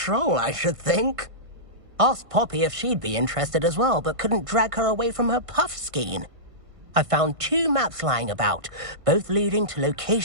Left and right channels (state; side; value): late; left; 1.5 ms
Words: I should think. Asked Poppy if she'd be interested as well, but couldn't drag her away from her puff skein. I found 2 maps lying about, both leading to